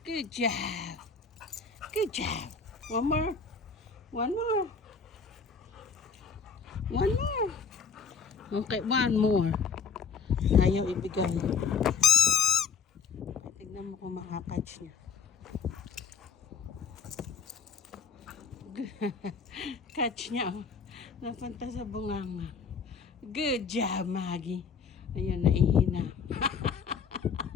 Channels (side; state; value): right; quieter; 5.7 dB